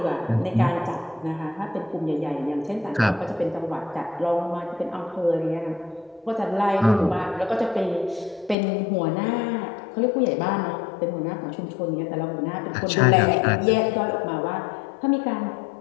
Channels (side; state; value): right; drops out; at 8.6 s